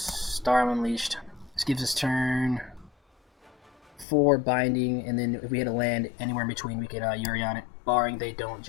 Unleashed. This gives us turn 4 Binding, and then if we hit a land anywhere in between, we could Yorion it, barring they don't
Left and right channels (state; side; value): drops out; right; at 4.0 s